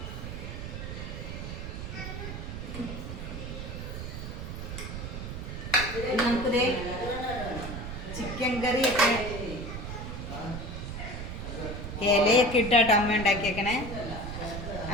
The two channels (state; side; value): noise; right; rumble, 7 dB below the sound